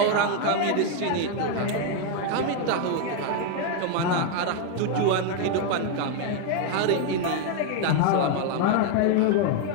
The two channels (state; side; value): different; both; correlation 0.01